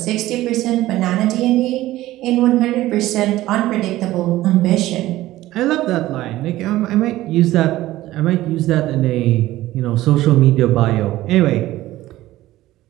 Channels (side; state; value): left; quieter; 16.0 dB